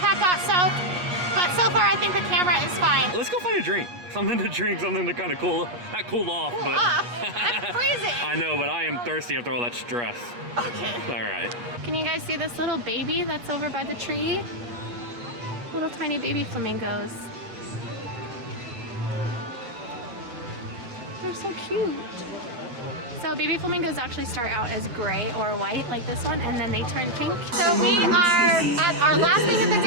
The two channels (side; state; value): left; late; 8.3 ms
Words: got soaked. But so far I think the camera is fine. Let's go find a drink. Something to drink, something to kind of not cool off, but I'm freezing. I know, but I am thirsty after all that stress. Okay. All right. Can you guys see this little baby that's over by the tree? Little tiny baby flamingos. They're so cute. So baby flamingos actually start out as gray or white like this one, and then they turn pink. So we are at our last thing of the